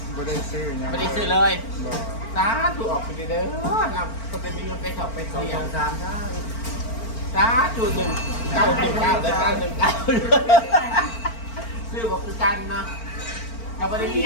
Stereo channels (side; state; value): right; late; 4.4 ms